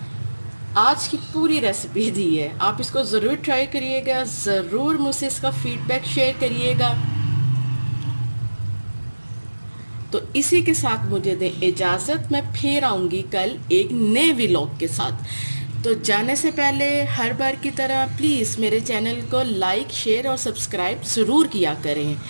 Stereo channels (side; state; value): both; inverted; correlation -1.00